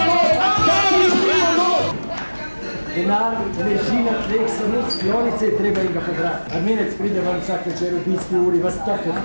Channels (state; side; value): inverted; both; correlation -1.00